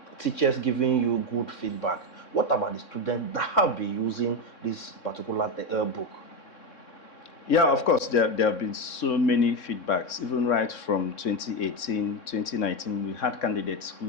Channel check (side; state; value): right; late; 3.6 ms